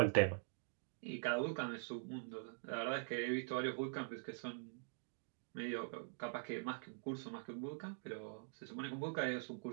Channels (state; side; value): silent; left; digital silence